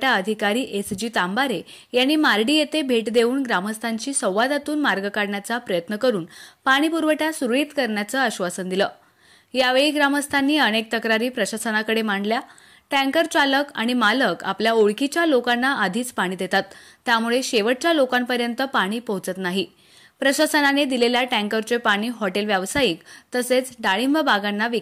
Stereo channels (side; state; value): both; identical; correlation 1.00